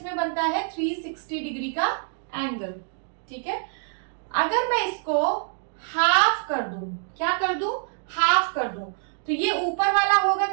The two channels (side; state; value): left; silent; digital silence